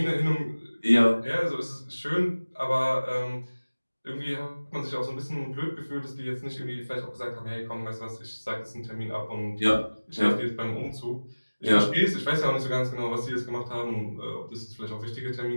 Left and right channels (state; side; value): inverted; both; correlation -1.00